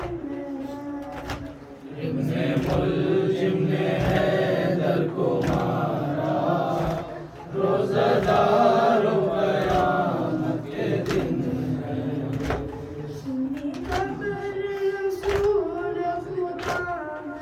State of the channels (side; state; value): both; identical; correlation 1.00